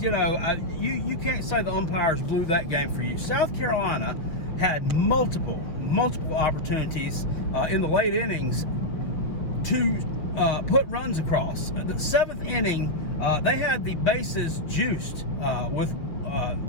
you know, you can't say the umpires blew that game for you. South Carolina had multiple opportunities in the late innings to put runs across. The 7th inning, they had the bases juiced with,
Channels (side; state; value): right; late; 6.1 ms